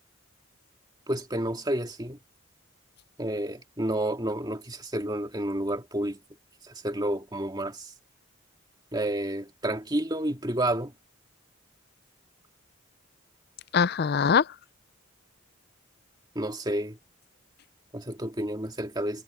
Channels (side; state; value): both; normal; correlation 0.46